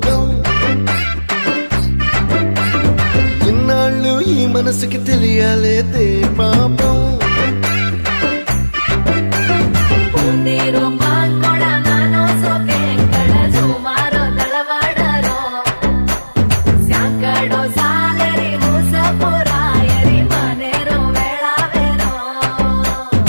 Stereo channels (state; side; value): inverted; both; correlation -1.00